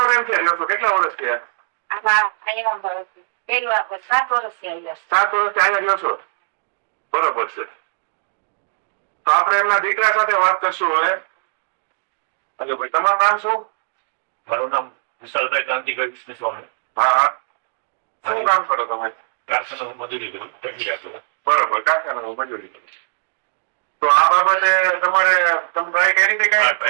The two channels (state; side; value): silent; left; digital silence